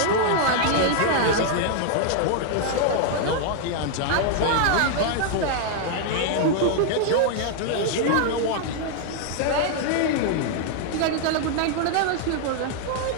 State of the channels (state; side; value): different; both; correlation 0.00